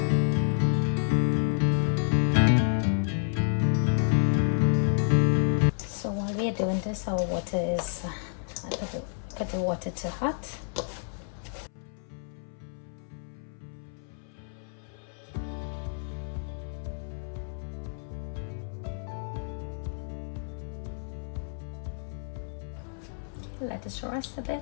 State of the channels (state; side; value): silent; right; 58 dB below the other